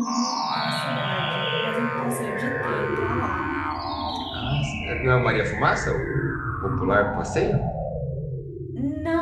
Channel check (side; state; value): both; identical; correlation 1.00